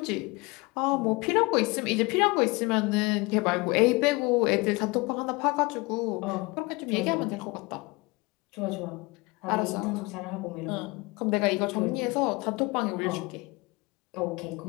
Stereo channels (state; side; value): quieter; right; 25.1 dB